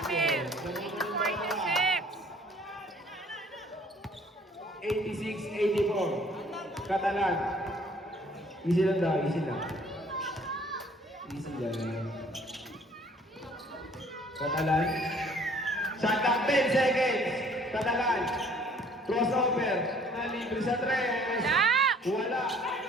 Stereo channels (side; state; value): both; normal; correlation 0.57